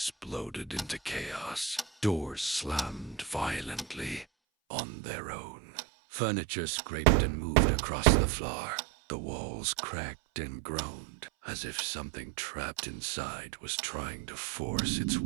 into chaos. Doors slammed violently on their own. Furniture scraped and moved across the floor. The walls cracked and groaned, as if something trapped inside was trying to force its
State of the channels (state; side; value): drops out; left; at 4.2 s